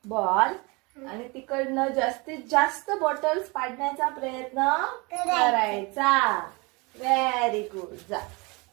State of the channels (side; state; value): left; quieter; 27.5 dB